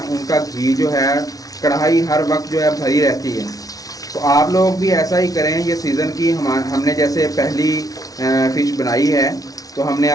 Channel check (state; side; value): late; right; 0.18 ms